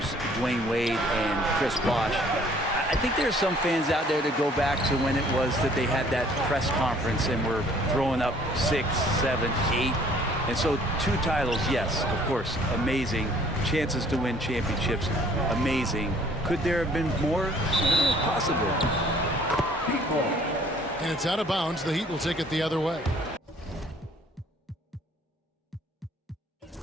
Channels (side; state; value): both; normal; correlation 0.57